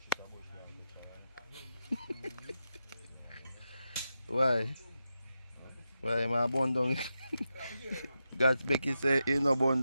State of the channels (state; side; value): inverted; both; correlation -0.88